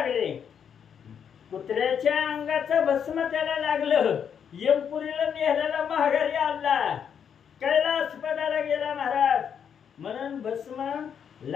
कुत्र्याच्या अंगाचं भस्म त्याला लागलं. यमपुरीला नेहल्याला माघारी आणला, कैलासपदाला गेला महाराज. म्हणून भस्म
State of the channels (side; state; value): right; quieter; 7.8 dB